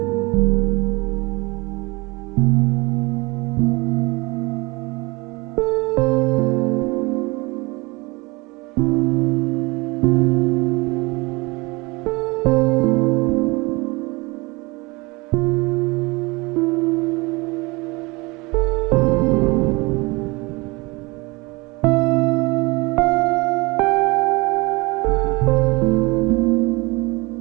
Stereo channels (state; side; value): quieter; left; 25.0 dB